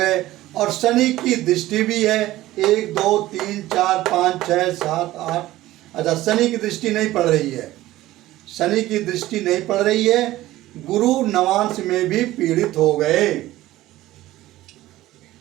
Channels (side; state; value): left; quieter; 16.0 dB